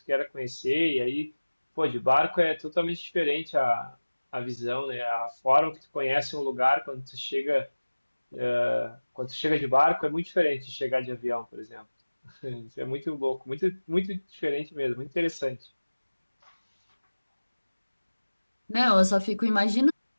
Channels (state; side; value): inverted; both; correlation -1.00